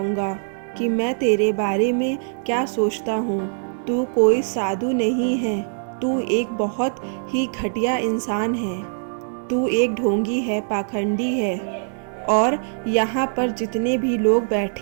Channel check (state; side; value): silent; left; digital silence